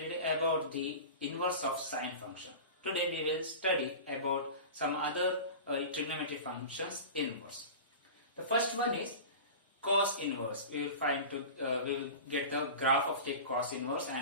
about the inverse of sine function. Today we will study about some other trigonometric functions inverse. The first one is cos inverse. We will get the graph of the cos inverse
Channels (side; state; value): both; inverted; correlation -0.32